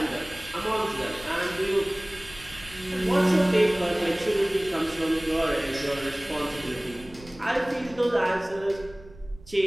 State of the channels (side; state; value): right; noise; rumble, 20 dB below the sound